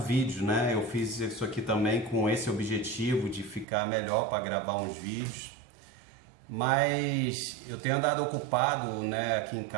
vídeo, né? Eu fiz isso aqui também com esse objetivo de ficar melhor para gravar uns vídeos. Mas eu tenho andado ocupado, né, aqui em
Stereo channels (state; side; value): drops out; left; at 3.7 s